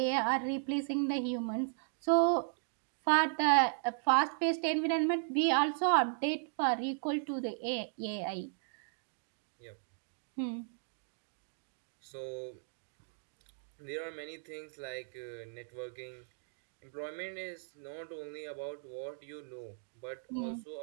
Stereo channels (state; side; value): silent; left; digital silence